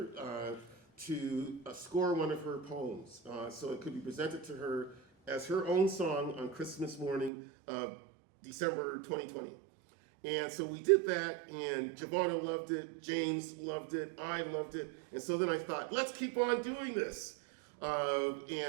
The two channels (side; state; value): left; drops out; at 7.3 s